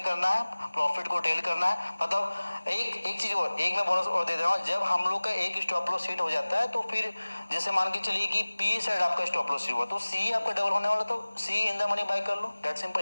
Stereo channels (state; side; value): inverted; both; correlation -1.00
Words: करना है, प्रॉफिट को टेल करना है। मतलब एक चीज और, एक मैं बोनस और दे रहा हूँ, जब हम लोग का एक स्टॉप लॉस हिट हो जाता है, तो फिर जैसे मान के चलिए कि पी साइड आपका स्टॉप लॉस हुआ, तो सी आपका डबल होने वाला, तो CE in the money buy कर लो, that simple.